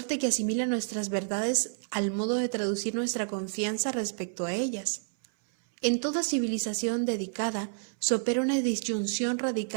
que asimila nuestras verdades al modo de traducir nuestra confianza respecto a ellas. En toda civilización dedicada se opera una disyunción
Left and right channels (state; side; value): silent; left; 58 dB below the other